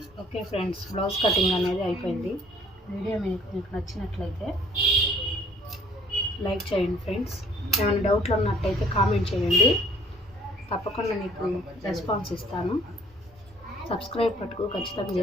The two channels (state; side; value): normal; both; correlation 0.57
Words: ఓకే ఫ్రెండ్స్, బ్లౌజ్ కటింగ్ అనేది అయిపోయింది. వీడియో మీకు నచ్చినట్లయితే లైక్ చేయండి ఫ్రెండ్స్. ఏమైనా డౌట్లు ఉన్నట్టయితే కామెంట్ చేయండి, తప్పకుండా మీకు రెస్పాన్స్ ఇస్తాను. సబ్స్క్రైబ్ పట్టుకు ఖచ్చితంగా